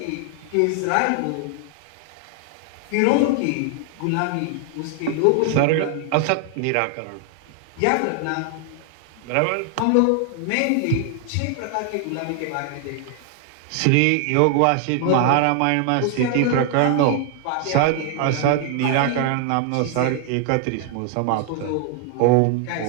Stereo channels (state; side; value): different; both; correlation 0.00